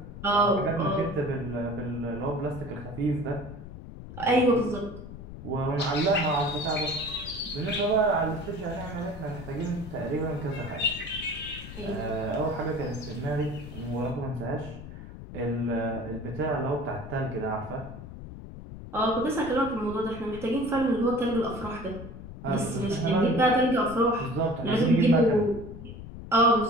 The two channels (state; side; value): noise; left; rumble, 12 dB below the sound